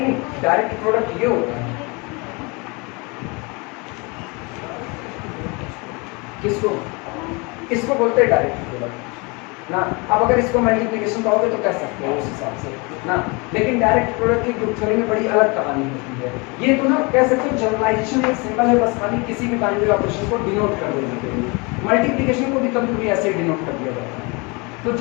डायरेक्ट प्रोडक्ट ये होता है, किसको? इसको बोलते हैं डायरेक्ट प्रोडक्ट ना. अब अगर इसको मल्टीप्लिकेशन कहोगे तो कह सकते हो उस हिसाब से ना, लेकिन डायरेक्ट प्रोडक्ट की ग्रुप थ्योरी में बड़ी अलग कहानी होती है. ये तो ना कह सकते हो जनरलाइजेशन एक सिंबल है, बस खाली किसी भी बाइनरी ऑपरेशन को डिनोट कर देने के लिए. मल्टीप्लिकेशन को भी कभी कभी ऐसे डिनोट कर दिया जाता है, तो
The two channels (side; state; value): right; quieter; 28.8 dB